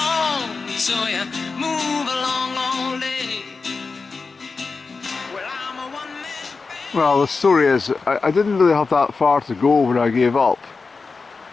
so you move along all day. Well, I'm a one-man band. Well, the story is, I didn't really have that far to go when I gave up.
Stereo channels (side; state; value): right; quieter; 4.4 dB